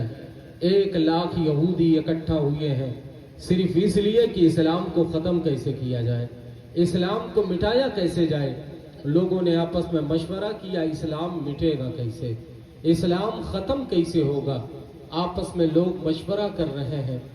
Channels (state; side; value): identical; both; correlation 1.00